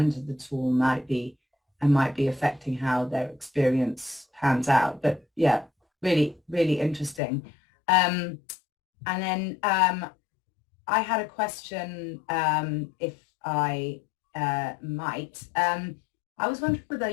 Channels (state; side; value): drops out; right; at 7.2 s